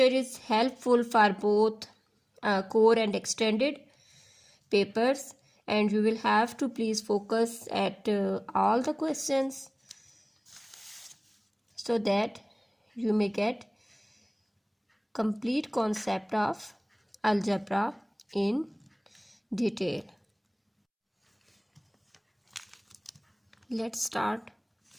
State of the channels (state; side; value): identical; both; correlation 1.00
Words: is helpful for both core and extended papers, and you will have to please focus at all the questions so that you may get complete concept of algebra in detail. Let's start